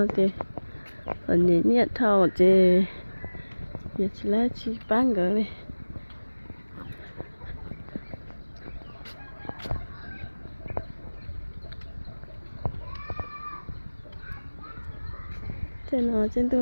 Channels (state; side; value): inverted; both; correlation -1.00